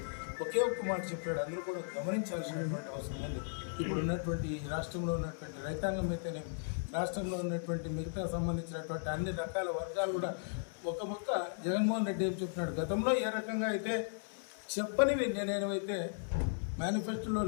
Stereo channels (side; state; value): right; silent; digital silence